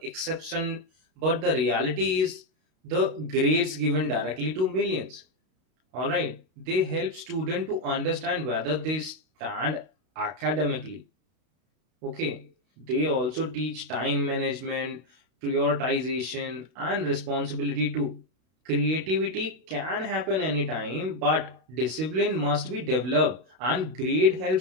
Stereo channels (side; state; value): left; late; 32 ms